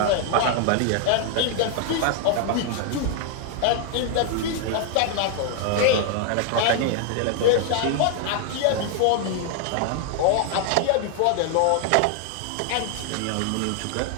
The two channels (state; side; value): different; both; correlation 0.00